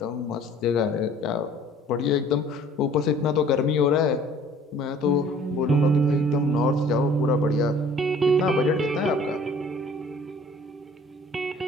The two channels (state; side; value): normal; both; correlation 0.53